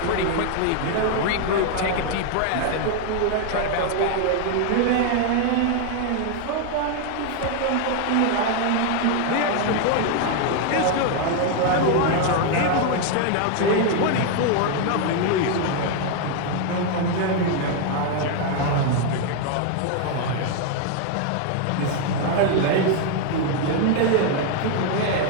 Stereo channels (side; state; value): both; different; correlation 0.00